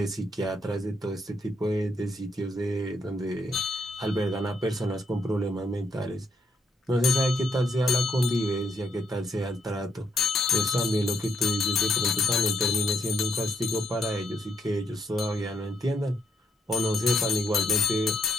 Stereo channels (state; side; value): normal; both; correlation 0.74